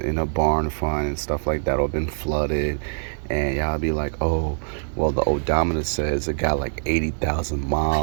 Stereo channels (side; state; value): left; silent; digital silence